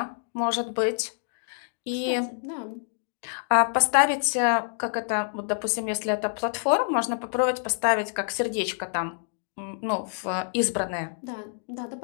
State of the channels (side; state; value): right; silent; digital silence